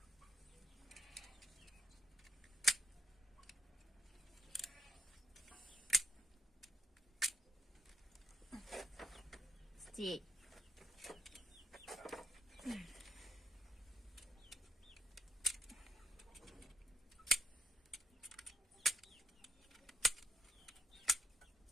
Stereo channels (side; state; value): both; normal; correlation 0.74